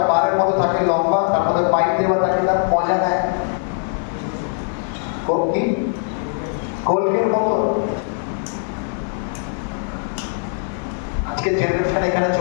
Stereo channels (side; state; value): right; silent; 59 dB below the other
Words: বারের মতো থাকে, লম্বা, তার মধ্যে পাইপ দেওয়া থাকে, তার মজা নেয় কি কোল্ডের মতো। আজকে জেনারেশন এখানে